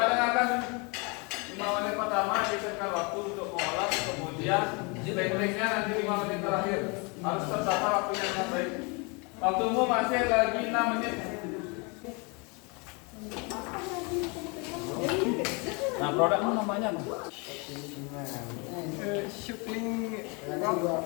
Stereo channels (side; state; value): right; quieter; 30.9 dB